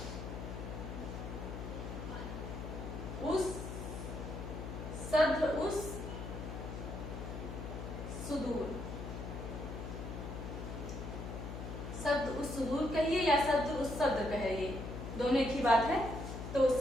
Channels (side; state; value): left; noise; hum, 7 dB below the sound